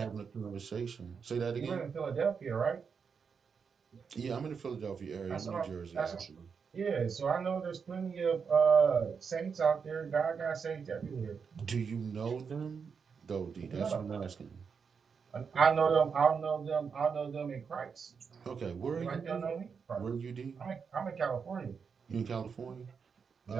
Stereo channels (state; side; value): quieter; left; 6.0 dB